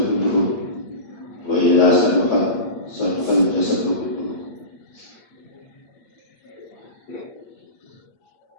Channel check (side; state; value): right; late; 8.3 ms